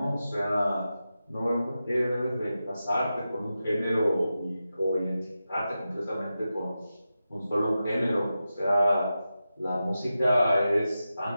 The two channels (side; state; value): both; inverted; correlation -0.91